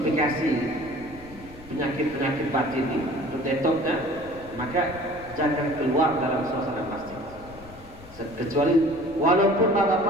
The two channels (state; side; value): noise; left; rumble, 20 dB below the sound